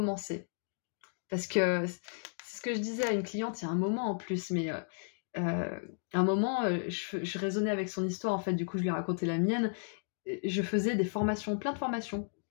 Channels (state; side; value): silent; right; digital silence